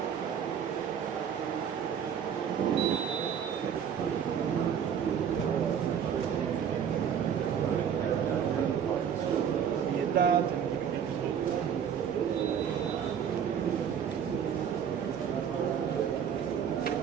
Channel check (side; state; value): left; quieter; 8.2 dB